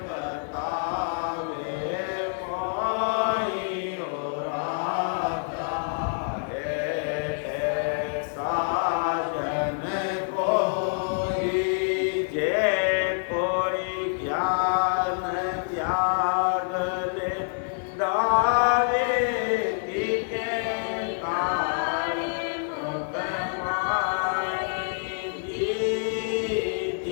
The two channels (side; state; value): right; silent; 60 dB below the other